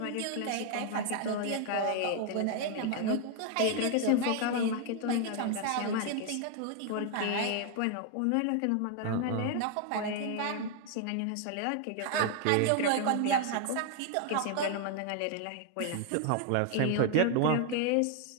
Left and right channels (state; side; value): different; both; correlation 0.00